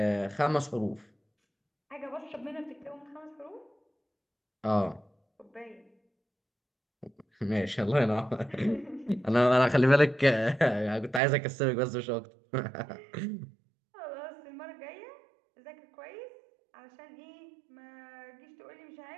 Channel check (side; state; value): left; drops out; at 11.2 s